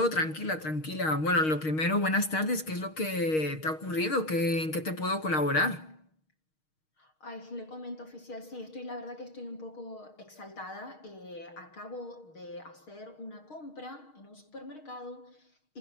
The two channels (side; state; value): right; late; 6.4 ms